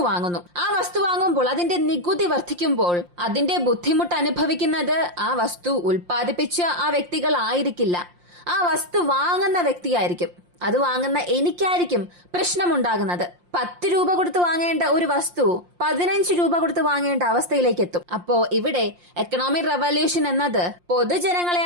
വാങ്ങുന്നു. ആ വസ്തു വാങ്ങുമ്പോൾ അതിന്റെ നികുതി വർദ്ധിക്കുമ്പോൾ അതിന്റെ ബുദ്ധിമുട്ട് അനുഭവിക്കുന്നത് ആ വസ്തു ഉൽപ്പാദിപ്പിച്ച ആ വ്യക്തികളായിരിക്കില്ല, ആ വസ്തു വാങ്ങുന്ന വ്യക്തിയായിരിക്കും. അത് വാങ്ങുന്ന എനിക്കായിരിക്കും പ്രശ്നമുണ്ടാകുന്നത്. 10 രൂപ കൊടുത്ത് വാങ്ങേണ്ട ഒരു വസ്തു 15 രൂപ കൊടുത്ത് വാങ്ങേണ്ട അവസ്ഥയിലേക്ക് എത്തും. അപ്പോ ഇവിടെ എക്കണോമിക് റവല്യൂഷൻ എന്നത്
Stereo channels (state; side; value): late; left; 5.7 ms